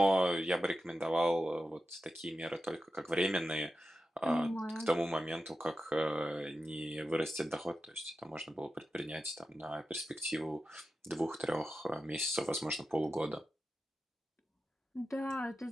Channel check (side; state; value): both; normal; correlation 0.91